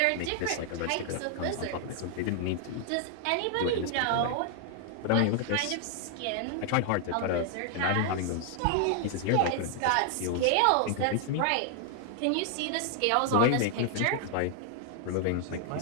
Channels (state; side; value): different; both; correlation 0.00